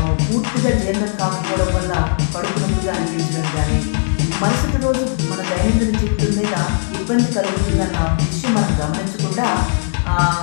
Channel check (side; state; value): right; silent; 67 dB below the other